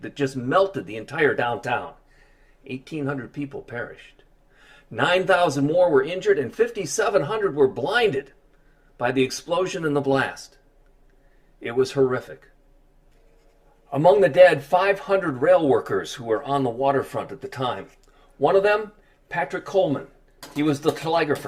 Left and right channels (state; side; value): identical; both; correlation 1.00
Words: that just melted the entire downtown. 1,800 people perished. 9,000 more were injured, and 5,700 were blinded by the explosion and the blast. It was horrific. Among the dead, 500 rail workers who were on the waterfront at the time. One of them, Patrick Coleman. He was the